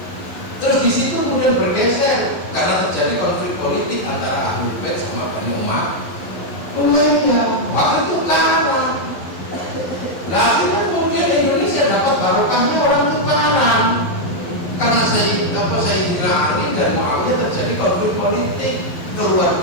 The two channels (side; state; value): right; late; 11 ms